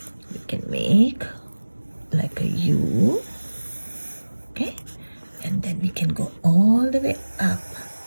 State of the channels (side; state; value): both; inverted; correlation -1.00